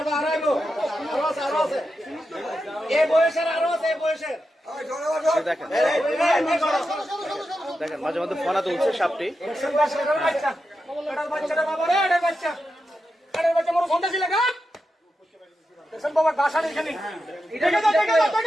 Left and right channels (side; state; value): both; normal; correlation 0.88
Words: আরো আছে এই বয়সের, আরো আছে এই বয়সের। দেখেন দেখেন মাঝে মধ্যে ফনা তুলছে সাপটি। বাচ্চাটা বাবা রে, এটা বাচ্চা, এটা বাচ্চা মোর সন্ধ্যা ছিল গা। দেখেন বাবা গাছা এখানে, দেখে দাও দেখে দাও